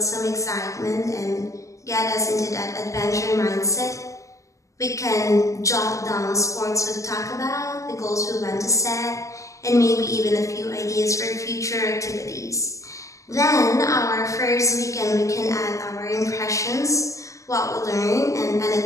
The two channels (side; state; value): right; late; 0.16 ms